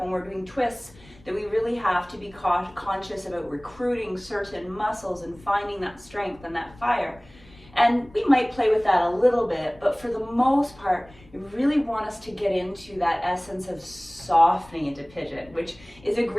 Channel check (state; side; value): noise; left; rumble, 24 dB below the sound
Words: when we're doing twists, that we really have to be conscious about recruiting certain muscles and finding that strength and that fire. And we might play with that a little bit, but for the most part, we really want us to get into that essence of softening into Pigeon, which is a